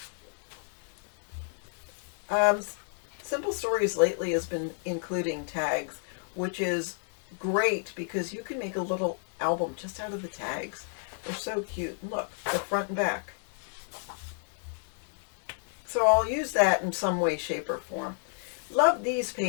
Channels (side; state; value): right; silent; 57 dB below the other